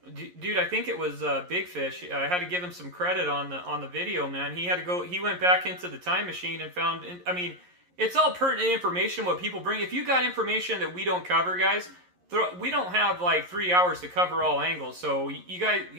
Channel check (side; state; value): left; late; 11 ms